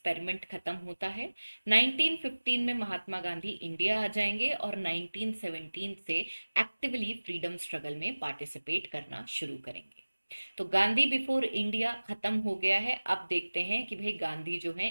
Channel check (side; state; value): both; inverted; correlation -1.00